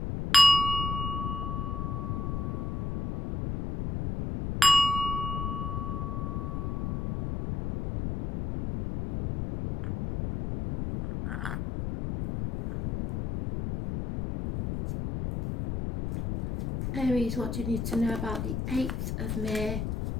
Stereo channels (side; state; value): left; noise; rumble, 3 dB below the sound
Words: Aries, what do you need to know about the 8th of May